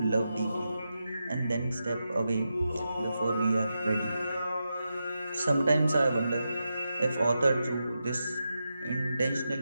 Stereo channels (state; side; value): inverted; both; correlation -0.88